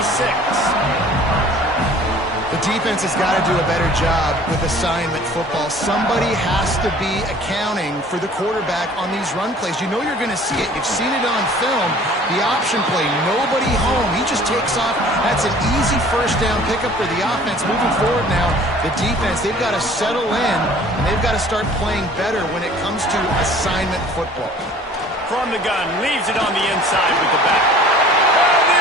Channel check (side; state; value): both; normal; correlation 0.50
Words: The defense has got to do a better job with assignment football. Somebody has to be accounting for the quarterback on these run plays. You know you're going to see it. You've seen it on film. The option play, nobody home. He just takes off. That's an easy first down pickup for the offense. Moving forward now, the defense, they've got to settle in, and they've got to start playing better when it comes to assignment football. From the gun, leaves it on the inside with the back. And